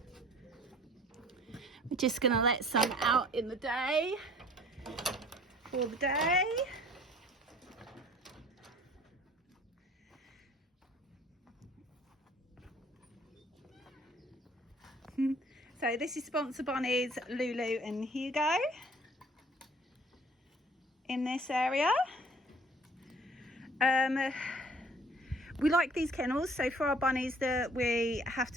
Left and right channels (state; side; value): normal; both; correlation 0.53